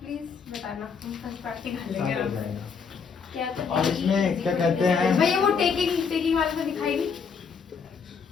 बताना, हम फर्स्ट पार्ट निकाल साथ हो लेंगे। जाएगा। क्या तो और इसमें क्या कहते हैं? भैया वो टेकिंग वाले से दिखाएगी।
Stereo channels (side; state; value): right; quieter; 5.9 dB